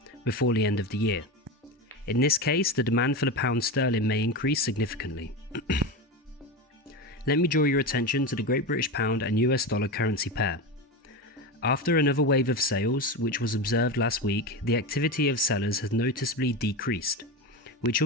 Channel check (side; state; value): both; normal; correlation 0.20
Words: before the end of the year. In this case, the demand for the pound sterling may increase significantly. Let me draw your attention to the Great British Pound and US dollar currency pair. After another wave of sales, which was observed last week, the activity of sellers has noticeably decreased, which